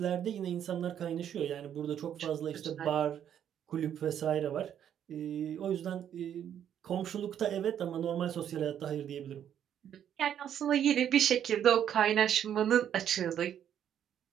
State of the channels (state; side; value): quieter; left; 9.6 dB